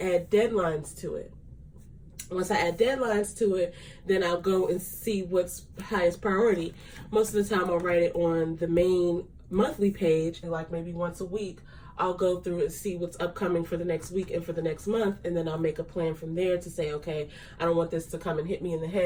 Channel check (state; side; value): identical; both; correlation 1.00